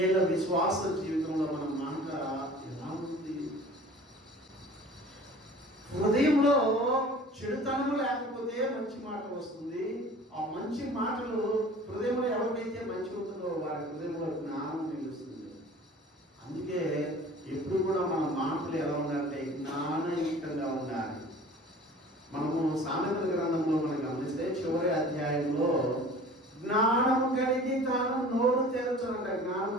విశ్వాస జీవితంలో మన మాట ఎలా ఉంది? హృదయంలో చెడుతనము లేకపోతే మంచి మాట వస్తుంది. ఆ మంచి మాటలు హృదయంలో ఎవరికైతే మంచి ఉంటుందో వారి హృదయంలో జ్ఞానం నిలుస్తుంది. అందుకే ఎప్పుడు కూడా మన మాటలు ఎలా ఉండాలంటే జ్ఞానయుక్తంగా ఉండాలి. మనము సామెతల గ్రంథంలో మనం గమనిస్తే చివరి అధ్యాయంలో జ్ఞానము కలిగి తాను నోరు తెరచునంట. జ్ఞానం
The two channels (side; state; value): both; normal; correlation 0.45